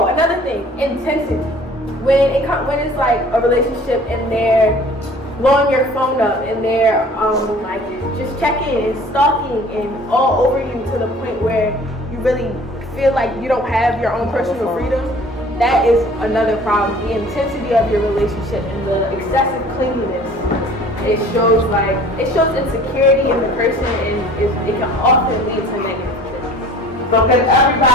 another thing, intensity. When it's like a relationship and they're blowing your phone up and they're like just checking and stalking and all over you to the point where you really feel like you don't have your own personal freedom, that is another problem. The intensity of your relationship and the excessive clinginess. It shows insecurity in the person and it can often lead to negative things. So can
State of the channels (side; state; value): both; normal; correlation 0.49